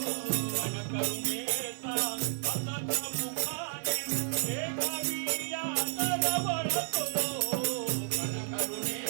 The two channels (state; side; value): silent; left; digital silence